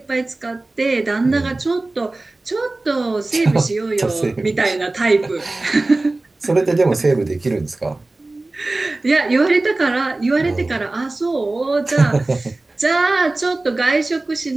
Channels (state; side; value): quieter; left; 3.0 dB